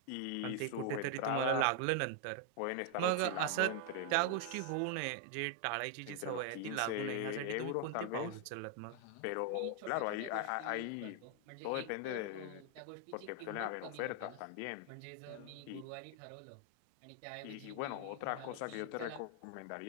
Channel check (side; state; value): both; different; correlation 0.00